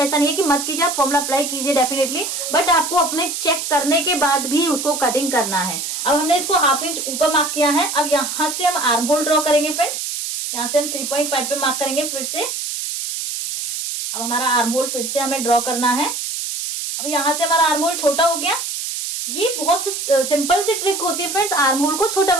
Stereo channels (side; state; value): right; noise; hiss, 4 dB below the sound